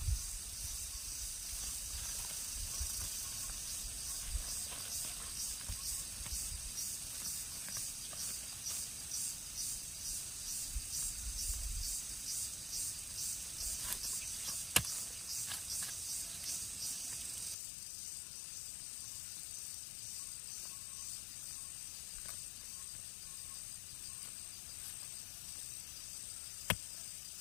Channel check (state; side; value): drops out; right; at 17.6 s